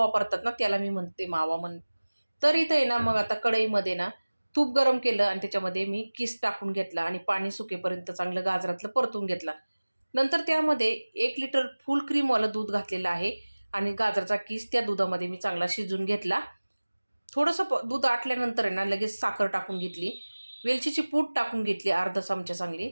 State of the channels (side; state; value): both; inverted; correlation -1.00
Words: ना, त्याला मी म्हणते मावा तर इथं आहे ना, मग आता कढईमध्ये ना तूप गरम केलं आणि त्याच्यामध्ये मी किस टाकून घेतला आणि पाणी सुकेपर्यंत चांगलं गाजरातलं परतून घेतला. नंतर त्यामध्ये 1 लिटर फुल क्रीमवालं दूध घातलेलं आहे आणि गाजराचा किस त्या दुधामध्ये मी चांगला शिजवून घेतला. थोडंसं दूध आटल्यानंतर आहे ना, लगेच साखर टाकून घेतली. वेलचीची पूड टाकून घेतली अर्धा चमचा चांगली